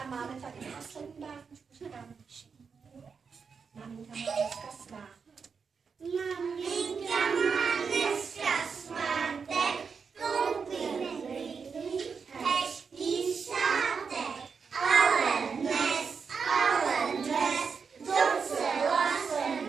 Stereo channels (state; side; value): quieter; left; 5.7 dB